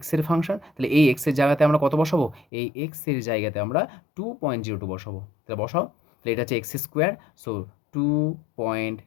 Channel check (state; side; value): drops out; right; at 2.5 s